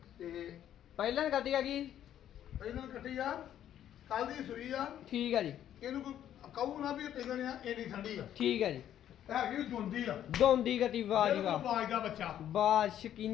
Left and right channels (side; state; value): right; quieter; 10.9 dB